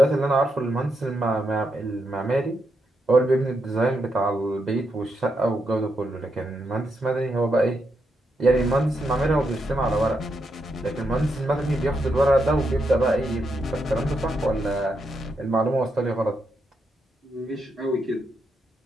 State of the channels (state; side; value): normal; both; correlation 0.82